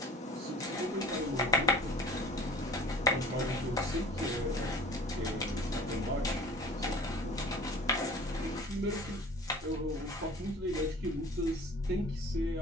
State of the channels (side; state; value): both; normal; correlation 0.42